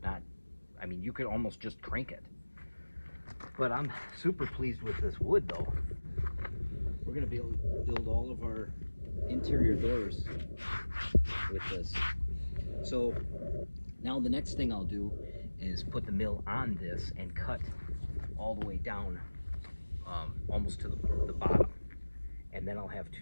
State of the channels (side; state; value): both; inverted; correlation -1.00